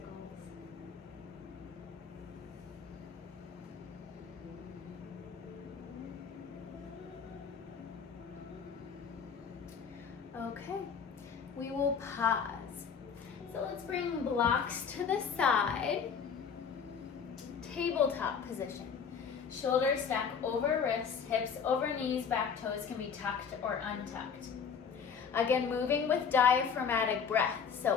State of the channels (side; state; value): right; quieter; 6.6 dB